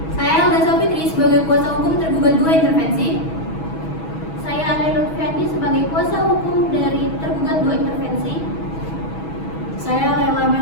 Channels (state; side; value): late; right; 6.2 ms